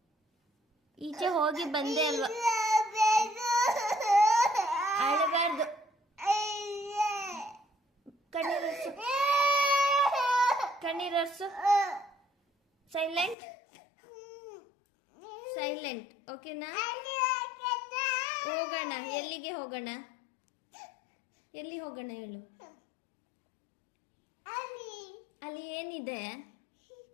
ಈಚೆ ಹೋಗಿ ಬಂದೆ ಅಲ್ವಾ? ಅಳಬಾರ್ದು. ಕಣ್ಣೀರರ್ಸು, ಕಣ್ಣೀರರ್ಸು. Silent, silent. ಓಕೆನಾ? ಹೋಗೋಣ. ಎಲ್ಲಿಗೆ ಹೋಗೋಣ? ಎಲ್ಲಿ ಹೋಗೋಣ ಹೇಳು? ಅಲ್ಲಿ ಏನಿದೆ?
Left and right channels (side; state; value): right; drops out; at 13.4 s